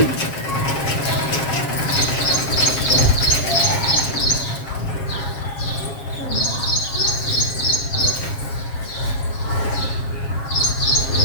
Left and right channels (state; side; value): late; right; 7.4 ms